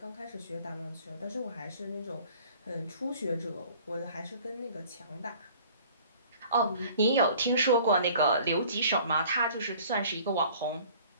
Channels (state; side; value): inverted; both; correlation -0.51